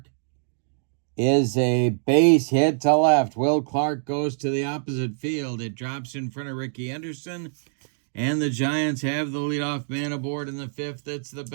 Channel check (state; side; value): silent; left; digital silence